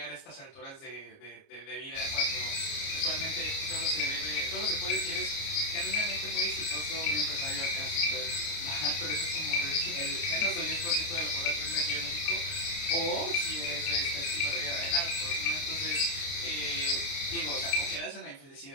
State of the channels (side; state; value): right; late; 29 ms